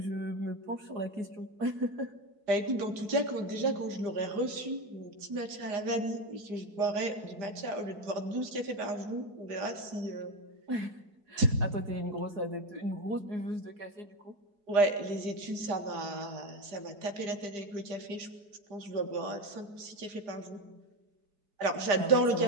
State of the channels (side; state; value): left; late; 5.0 ms